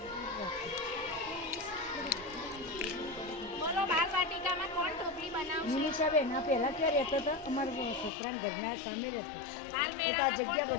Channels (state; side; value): drops out; right; at 8.1 s